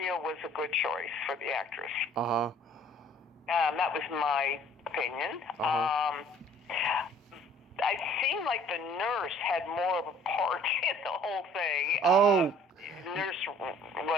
was a good choice for the actress. Uh-huh. That was my opinion. Uh-huh. I seemed like the nurse had more of a part in the whole thing. Oh. Nurse,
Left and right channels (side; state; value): both; normal; correlation 0.55